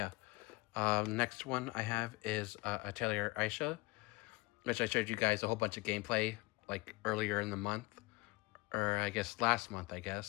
next one I have is Atelier Aisha, which I showed you guys a whole bunch of gameplay like earlier in the month, or I guess last month, I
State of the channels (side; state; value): right; quieter; 23.9 dB